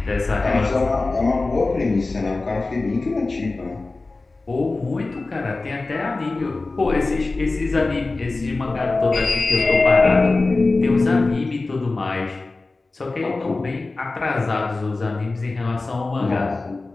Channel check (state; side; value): quieter; right; 3.4 dB